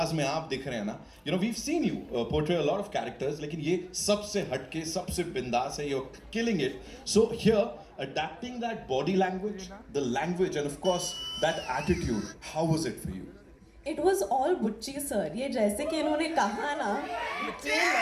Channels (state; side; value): identical; both; correlation 1.00